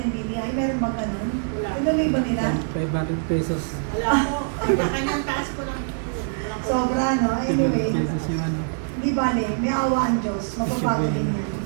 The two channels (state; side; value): silent; left; digital silence